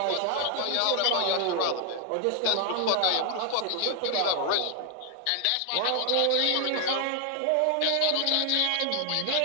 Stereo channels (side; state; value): both; different; correlation 0.00